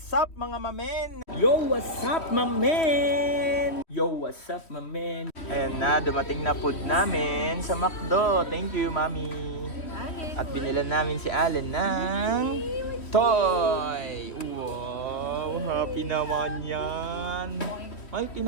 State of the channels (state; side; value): late; right; 3.1 ms